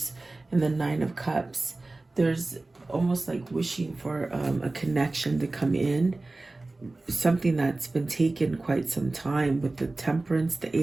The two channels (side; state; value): left; quieter; 3.1 dB